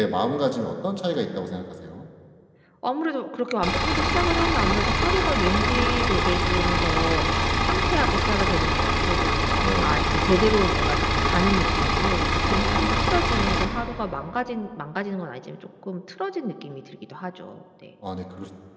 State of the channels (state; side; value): identical; both; correlation 1.00